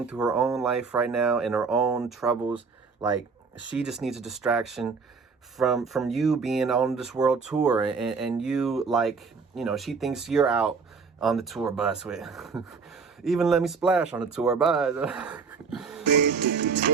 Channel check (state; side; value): quieter; left; 5.1 dB